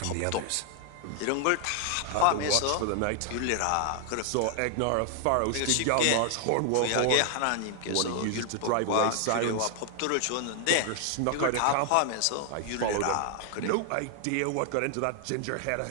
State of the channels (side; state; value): both; different; correlation 0.00